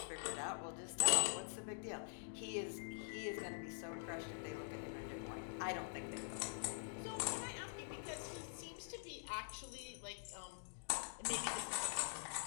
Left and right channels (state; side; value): silent; right; digital silence